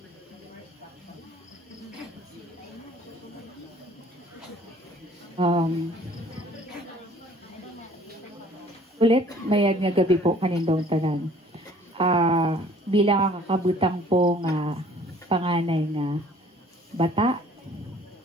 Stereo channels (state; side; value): normal; both; correlation 0.54